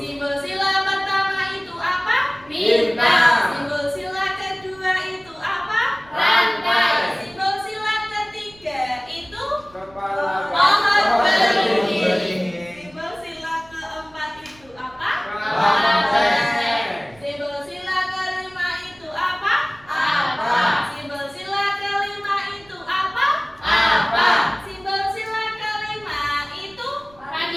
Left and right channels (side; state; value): right; noise; rumble, 26 dB below the sound